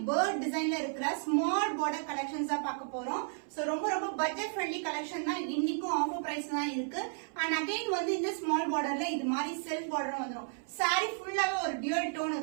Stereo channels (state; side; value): silent; left; 56 dB below the other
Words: பேர்ட் டிசைன்ல இருக்கிற ஸ்மால் பார்டர் கலெக்ஷன்ஸ் தான் பார்க்க போறோம். சோ ரொம்ப பட்ஜெட் ஃப்ரெண்ட்லி கலெக்ஷன் தான். இன்னைக்கும் ஆஃபர் பிரைஸ் தான் இருக்கு. அண்ட் அகைன் வந்து இந்த ஸ்மால் பார்டர்ல இது மாதிரி செல்ஃப் பார்டர் வந்துடும். சாரி ஃபுல்லாவே ஒரு டியூல் டோன்